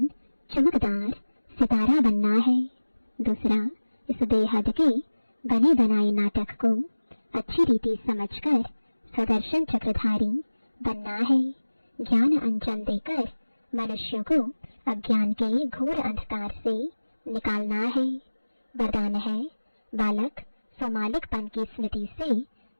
चमकदार सितारा बनना है। दूसरा, इस बेहद के बने बनाए नाटक को अच्छी रीति समझकर स्वदर्शन चक्रधारी बनना है। ज्ञान अंजन देकर मनुष्यों को अज्ञान के घोर अंधकार से निकालना है। वरदान है बालक स्वमालिकपन की स्मृति से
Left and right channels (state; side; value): inverted; both; correlation -1.00